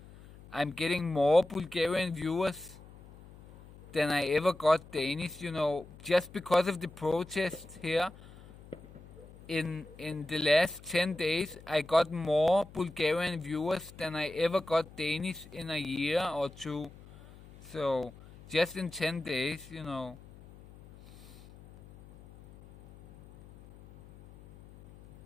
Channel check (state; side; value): noise; left; hum, 20 dB below the sound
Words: I'm getting more Bulgarian viewers than I ever got Danish, just because of the protest here. In the last 10 days, I got more Bulgarian viewers than I ever got Danish in a year or two. So, just in 10 days,